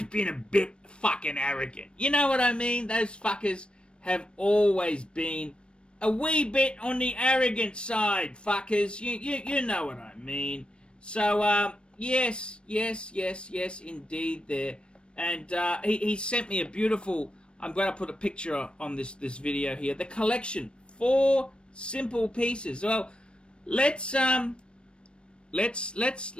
been a bit fucking arrogant. You know what I mean? Those fuckers have always been a wee bit on the arrogant side, fuckers. You know what I mean. So, yes, indeed there. And he sent me a beautiful, I'm going to put a picture on this video here. The collection, 4 simple pieces. Well, let's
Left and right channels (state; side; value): late; right; 0.056 ms